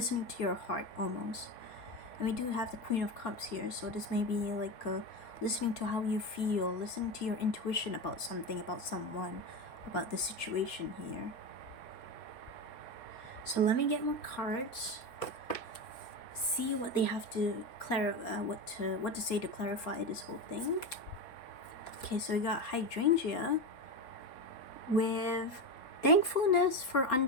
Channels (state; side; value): late; right; 3.9 ms